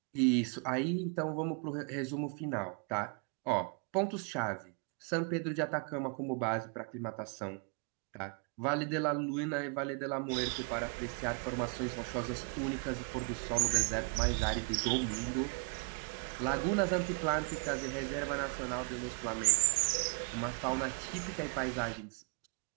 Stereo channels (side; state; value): left; quieter; 37.8 dB